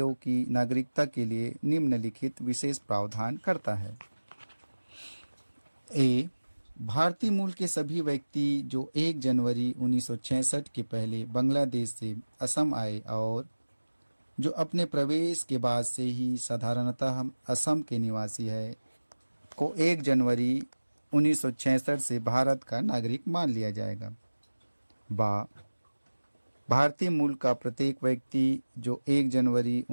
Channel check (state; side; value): inverted; both; correlation -1.00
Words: की नागरिकता के लिए निम्नलिखित विशेष प्रावधान करता है। ए भारतीय मूल के सभी व्यक्ति जो 1 जनवरी 1966 के पहले बांग्लादेश से असम आए और जो अपने प्रवेश के बाद से ही साधारणतः असम के निवासी है को 1 जनवरी 1966 से भारत का नागरिक मान लिया जाएगा। बा भारतीय मूल का प्रत्येक व्यक्ति जो 1 जनवरी